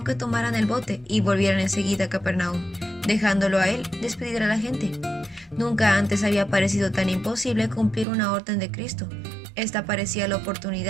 que tomaran el bote y volvieran enseguida a Capernaum, dejándolo a él despedir a la gente. Nunca antes había parecido tan imposible cumplir una orden de Cristo. Esta parecía la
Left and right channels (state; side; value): drops out; left; at 8.1 s